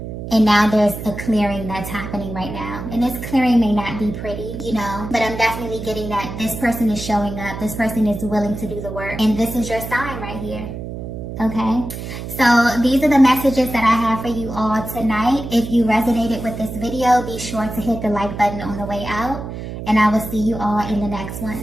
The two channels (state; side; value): noise; right; hum, 8 dB below the sound